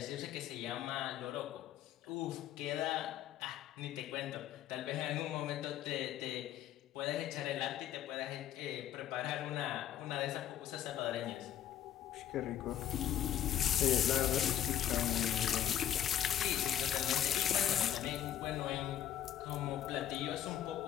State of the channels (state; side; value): quieter; right; 10.9 dB